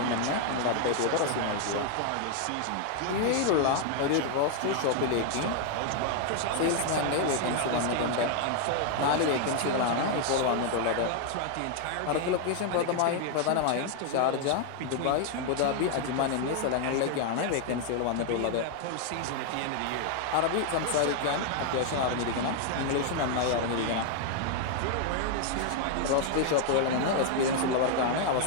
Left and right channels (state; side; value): different; both; correlation 0.00